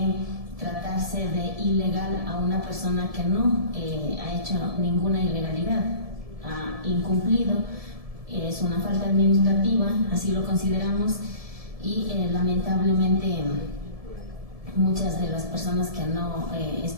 tratarse de ilegal a una persona que no ha hecho ninguna ilegalidad, ha incumplido, es una falta administrativa, así lo consideramos, y lamentablemente muchas de las personas que no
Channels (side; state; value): left; late; 1.7 ms